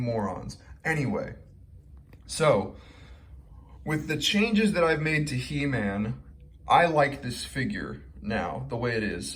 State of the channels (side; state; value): both; identical; correlation 1.00